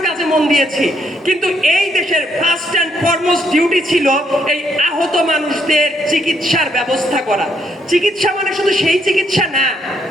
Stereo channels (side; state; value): both; normal; correlation 0.73